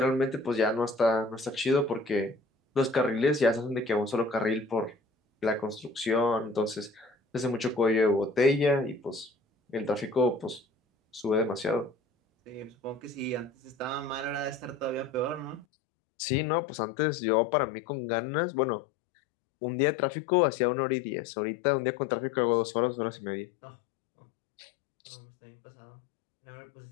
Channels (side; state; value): right; drops out; at 15.7 s